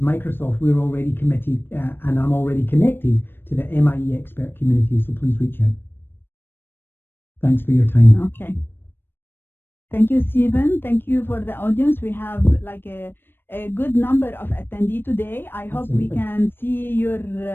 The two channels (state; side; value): late; right; 0.099 ms